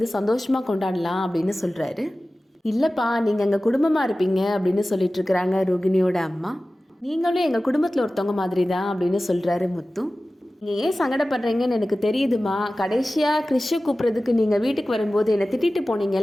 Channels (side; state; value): both; normal; correlation 0.96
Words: சந்தோஷமாக கொண்டாடலாம் அப்படின்னு சொல்கிறாரு. இல்லைப்பா, நீங்கள் எங்கள் குடும்பமாக இருப்பீங்க அப்படின்னு சொல்லிட்டு இருக்கிறாங்க ரோகிணியோட அம்மா. நீங்களும் எங்கள் குடும்பத்தில் ஒருத்தவங்க மாதிரி தான் அப்படின்னு சொல்கிறாரு முத்து. நீங்கள் ஏன் சங்கடப்படுறீங்கன்னு எனக்கு தெரியுதுமா, கடைசியாக கிறிஷை கூப்பிட்றதுக்கு நீங்கள் வீட்டுக்கு வரும்போது என்னை திட்டிட்டு